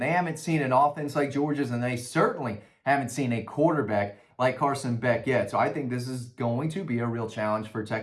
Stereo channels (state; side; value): identical; both; correlation 1.00